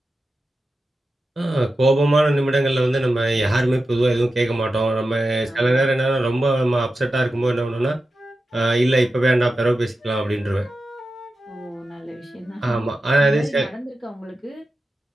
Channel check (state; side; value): normal; both; correlation 0.92